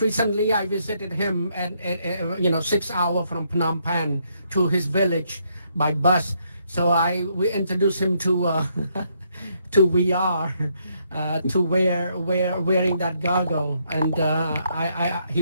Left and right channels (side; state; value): both; inverted; correlation -0.74